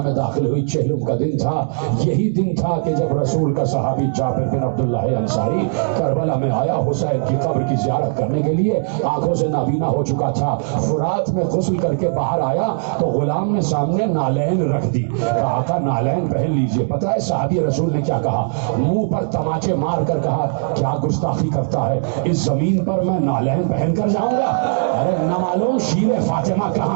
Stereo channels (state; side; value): silent; left; digital silence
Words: داخل ہوئی چہلم کا دن تھا۔ یہی دن تھا کہ جب رسول کا صحابی جابر بن عبداللہ انصاری کربلا میں آیا حسین کی قبر کی زیارت کرنے کے لیے، آنکھوں سے نابینا ہو چکا تھا۔ فرات میں غسل کر کے باہر آیا تو غلام نے سامنے نالین رکھ دی، کہا آقا نالین پہن لیجئے۔ پتہ ہے صحابی رسول نے کیا کہا؟ منہ پر تماچے مار کر کہا کیا گستاخی کرتا ہے، اس زمین پر میں نالین پہن کر جاؤں گا؟ ارے نہ معلوم شیر فاطمہ